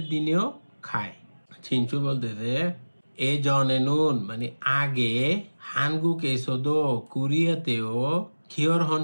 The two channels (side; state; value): both; inverted; correlation -1.00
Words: দিনেও খায়। ছিনসু বলতেছে এ জনে নুন মানে আগে, হানগুক এসোদো কোরিয়াতেও খিয়রহন